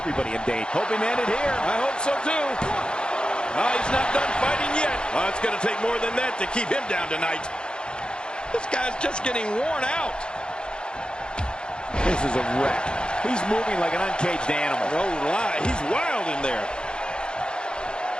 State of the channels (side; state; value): right; late; 0.050 ms